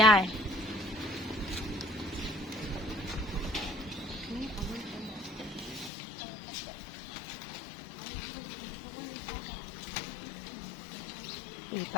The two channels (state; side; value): drops out; right; at 5.9 s